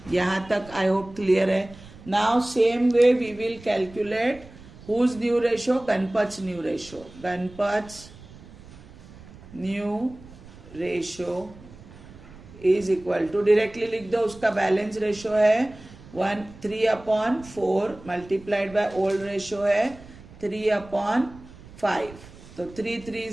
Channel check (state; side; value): noise; right; rumble, 19 dB below the sound